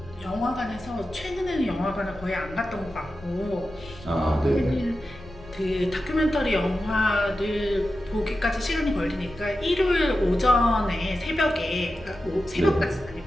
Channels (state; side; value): noise; left; rumble, 19 dB below the sound